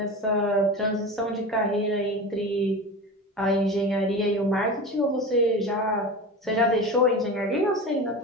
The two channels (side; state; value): both; normal; correlation 0.29